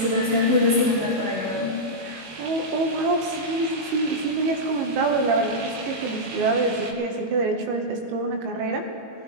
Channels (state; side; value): late; left; 19 ms